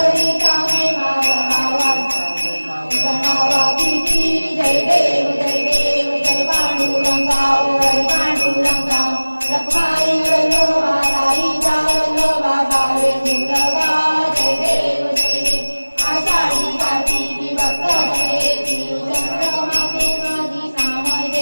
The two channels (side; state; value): both; inverted; correlation -1.00